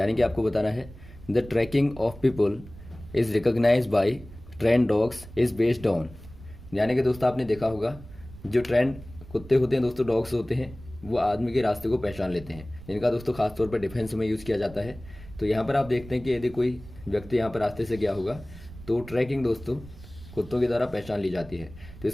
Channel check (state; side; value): noise; right; rumble, 17 dB below the sound